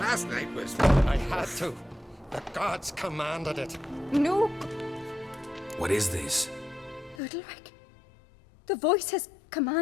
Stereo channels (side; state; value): right; drops out; at 7.2 s